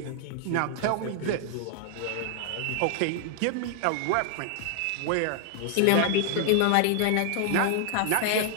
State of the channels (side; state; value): both; different; correlation 0.00